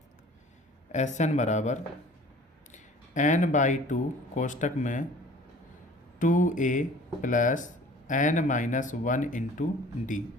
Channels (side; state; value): both; normal; correlation 0.48